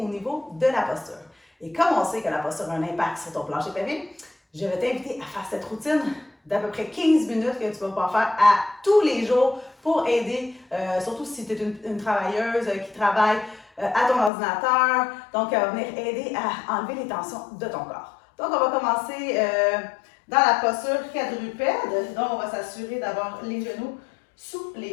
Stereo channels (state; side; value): drops out; right; at 14.3 s